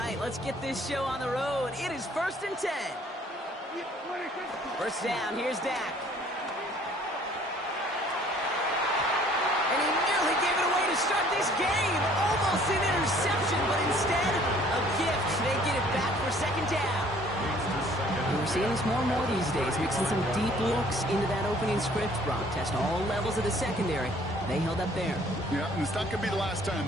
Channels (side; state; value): both; normal; correlation 0.57